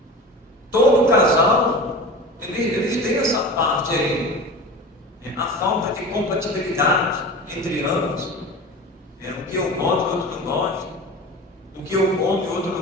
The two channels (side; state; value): both; normal; correlation 0.33